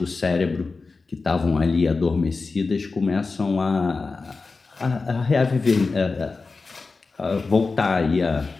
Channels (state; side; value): quieter; right; 4.1 dB